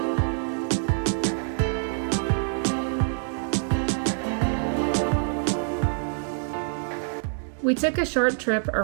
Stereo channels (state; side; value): silent; left; 61 dB below the other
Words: We took a short trip